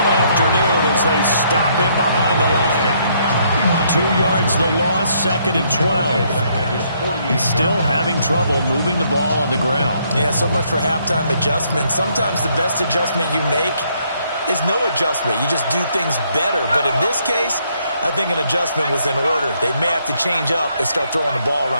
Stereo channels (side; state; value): both; inverted; correlation -0.70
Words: afternoon as they stop him behind the line. 2 yards the loss, 2nd and 12. He's still having trouble moving the ball on the ground. Yeah, so much for halftime adjustment. Sometimes the best adjustment you make is no adjustment. You just do things better. But in this case, I think an adjustment was in order. They may have to change up and start throwing the ball